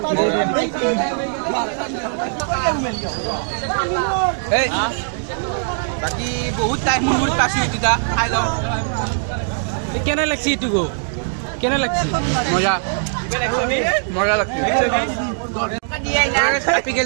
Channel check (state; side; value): silent; left; digital silence